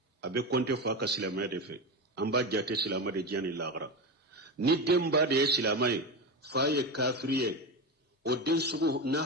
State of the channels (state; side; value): normal; both; correlation 0.18